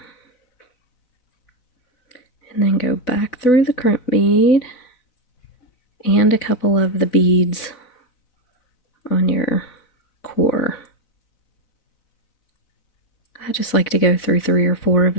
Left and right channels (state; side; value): late; right; 4.0 ms